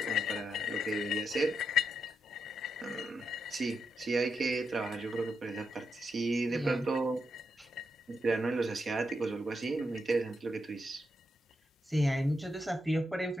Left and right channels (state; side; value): normal; both; correlation 0.83